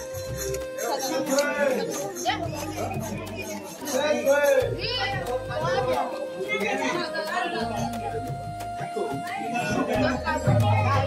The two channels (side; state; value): both; identical; correlation 1.00